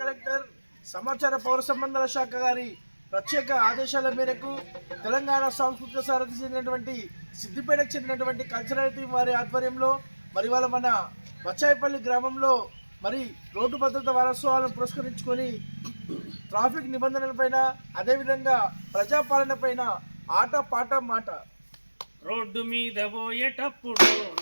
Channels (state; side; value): inverted; both; correlation -1.00